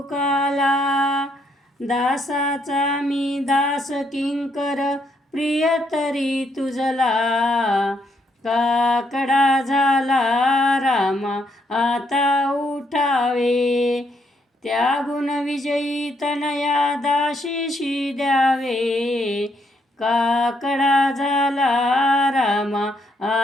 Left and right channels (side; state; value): both; normal; correlation 0.74